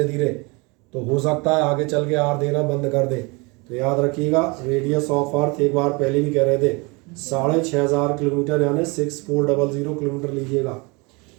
धीरे, तो हो सकता है आगे चल के आर देना बंद कर दे। तो याद रखिएगा, रेडियस ऑफ अर्थ एक बार पहले भी कह रहे थे 6500 किलोमीटर, यानी 6400 किलोमीटर लीजिएगा।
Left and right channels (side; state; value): left; quieter; 28.0 dB